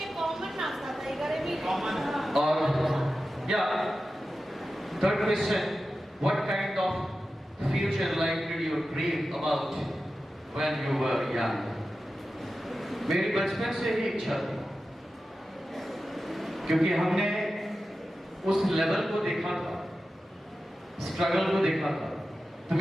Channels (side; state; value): both; normal; correlation 0.93